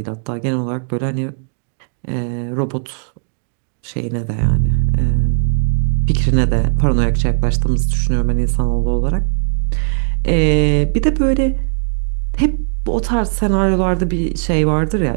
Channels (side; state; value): left; silent; digital silence